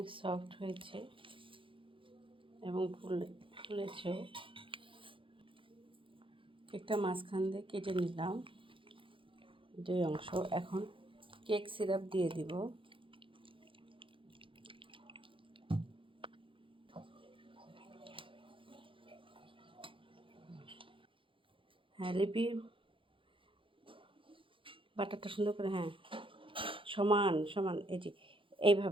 সফট হয়েছে এবং ফুলেছেও। কেকটা মাঝখান দিয়ে কেটে নিলাম 2 অংশ। এখন কেক সিরাপ দিয়ে দিব। হ্যাঁ লিপি, বাটারটা সুন্দর করে, হ্যাঁ সমান সমান, এই যে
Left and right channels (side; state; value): left; late; 0.25 ms